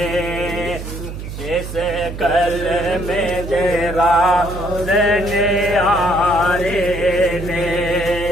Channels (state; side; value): noise; right; hum, 9 dB below the sound